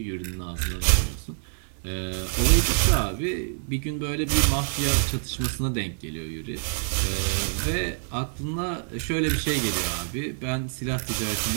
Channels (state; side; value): silent; left; digital silence